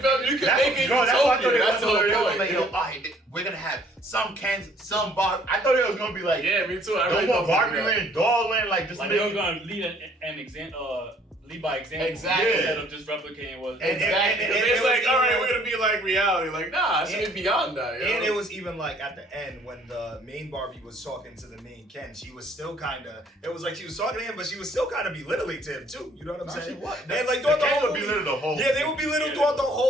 feel me? You can make it utopia. That's the whole point. Like, yo, we're gonna have some Kens, some Barbie. I thought it was gonna be like, yeah, me too. I really want Barbie Land, doll land, like just. Like they were gonna lead lead by example. Exactly. Instead of just replicating what. Exactly. And it's like, all right, even we're gonna be like reality. Like, nah, it should be beyond that. And it was even like at the end when the main Barbie was talking to the main Ken, she was still kind of. It was like she was talking to him, but she was still kind of belittling to him too. You know what I'm saying? And like throughout the whole movie, they would belittle throughout the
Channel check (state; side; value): normal; both; correlation 0.60